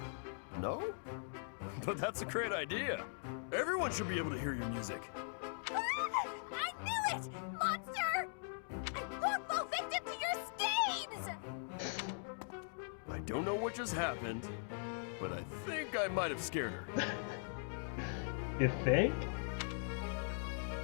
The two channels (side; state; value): right; silent; digital silence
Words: No? But that's a great idea. Everyone should be able to hear your music. I knew it! Monster! I won't fall victim to your schemes! I don't know what just happened, but I think I might have scared her. You think?